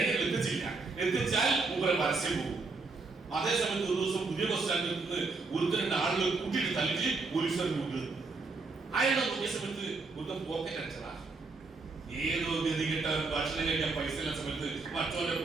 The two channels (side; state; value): left; quieter; 3.9 dB